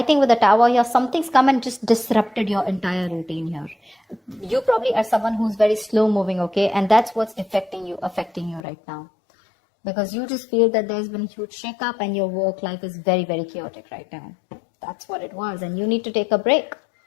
think with the Tower here, something's come and just disrupted your entire routine here. You probably are someone who's very slow moving, okay? And that's what's affecting you right now. Because you just feel that there's been a huge shake-up and your work life is very, very chaotic right now. That's what it was. And you need to take a break.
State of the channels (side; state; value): right; drops out; at 8.7 s